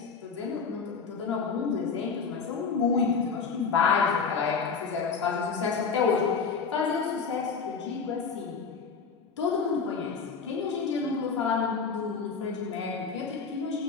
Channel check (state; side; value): quieter; right; 5.4 dB